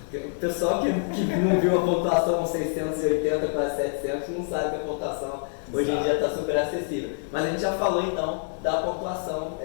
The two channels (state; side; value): silent; right; digital silence